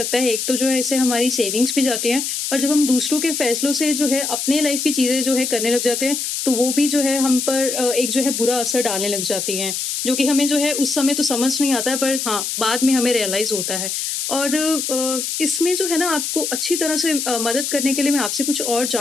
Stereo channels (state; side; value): noise; left; hiss, 2 dB below the sound